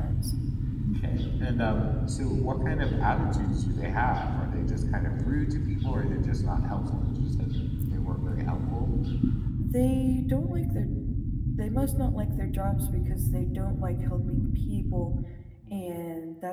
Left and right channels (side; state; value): both; identical; correlation 1.00